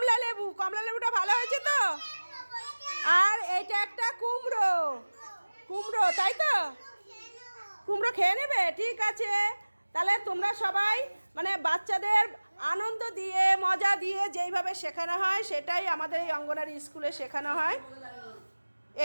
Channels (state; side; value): inverted; both; correlation -1.00